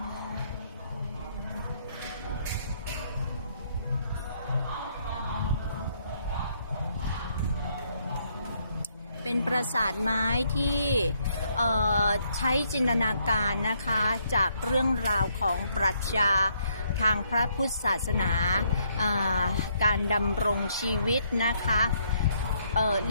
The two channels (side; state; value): both; inverted; correlation -0.71